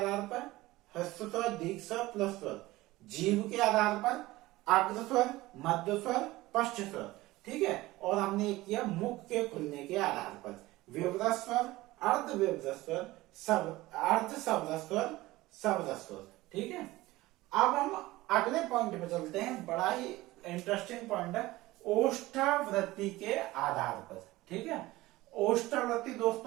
पर, ह्रस्व स्वर, दीर्घ स्वर, प्लस स्वर। जीभ के आधार पर अग्र स्वर, मध्य स्वर, स्पष्ट स्वर, ठीक है। और हमने एक किया मुख के खुलने के आधार पर, विवृत स्वर, अर्ध विवृत स्वर, अर्ध शब्द स्वर, शब्द स्वर, ठीक है। अब हम अगले पॉइंट पे चलते हैं, बड़ा ही इंटरेस्टिंग पॉइंट है, ओष्ठावृत्ति के आधार पर, ठीक है। ओष्ठावृत्ति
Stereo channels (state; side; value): quieter; left; 18.6 dB